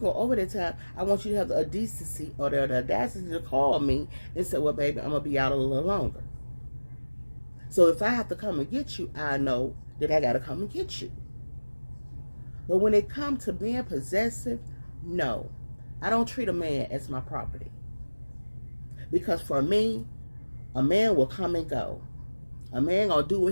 over that time, I want you to have the decency or the audacity to call me and say, well, baby, I'm going to be out a little longer. So if I have to come and get you, I know that I got to come and get you. But when it comes to being possessive, no. I don't treat a man as my property. Because for me, a man will come and go. A man gonna do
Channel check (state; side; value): inverted; both; correlation -1.00